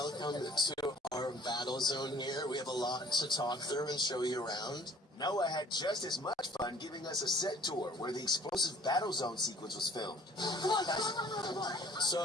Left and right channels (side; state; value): both; normal; correlation 0.54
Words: to our battle zone here. We have a lot to talk through and show you around. Noah had just as much fun giving us a set tour where the explosive battle zone sequence was filmed. Come on, guys.